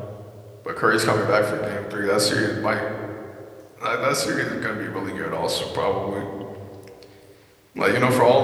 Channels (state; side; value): identical; both; correlation 1.00